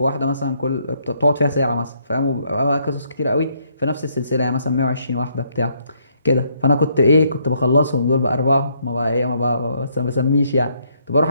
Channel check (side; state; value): both; inverted; correlation -0.71